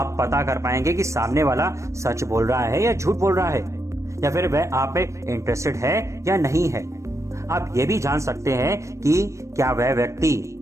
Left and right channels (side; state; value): left; late; 0.15 ms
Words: पता कर पाएंगे कि सामने वाला सच बोल रहा है या झूठ बोल रहा है, या फिर वह आप पे इंटरेस्टेड है या नहीं है। आप ये भी जान सकते हैं कि क्या वह व्यक्ति